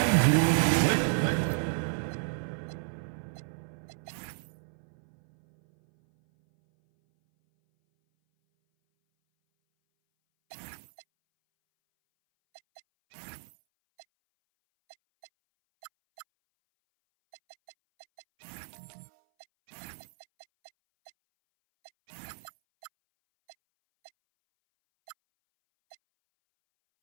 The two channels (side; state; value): left; silent; 56 dB below the other